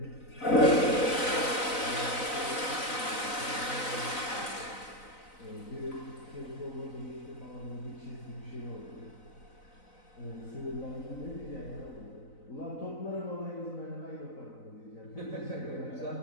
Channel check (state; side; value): late; right; 4.0 ms